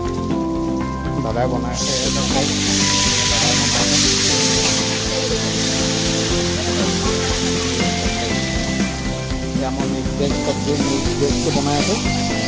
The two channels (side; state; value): both; identical; correlation 1.00